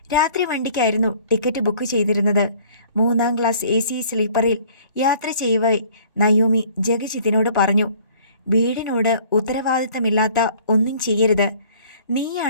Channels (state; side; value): inverted; both; correlation -0.54